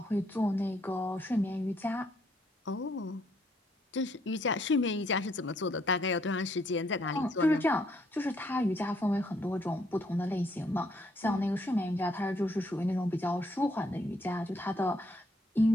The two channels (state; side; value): normal; both; correlation 0.70